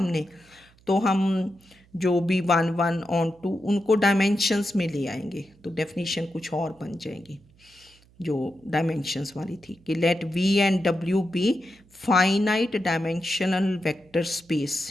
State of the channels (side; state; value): right; noise; hum, 29 dB below the sound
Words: तो हम जो भी 1 1 ऑन 2 उनको डायमेंशंस में ले आएंगे, तो डेफिनेशन कुछ और बन जाएगी जो डायमेंशंस वाली थी कि let v and w be finite dimensional vector